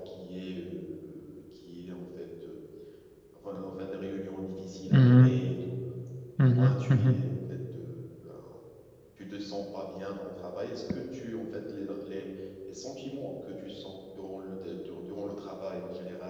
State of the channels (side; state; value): both; identical; correlation 1.00